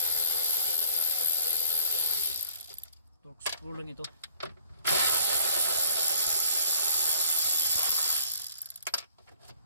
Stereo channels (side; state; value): both; inverted; correlation -0.53